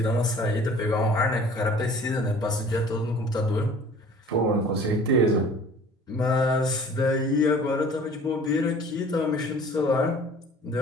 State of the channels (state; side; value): normal; both; correlation 0.48